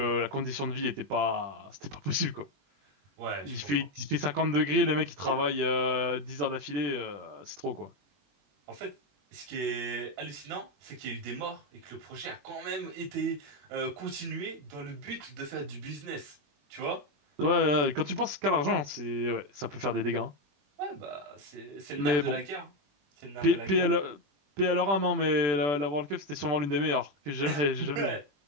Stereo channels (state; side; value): late; left; 20 ms